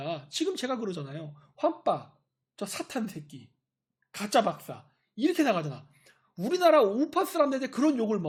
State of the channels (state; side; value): identical; both; correlation 1.00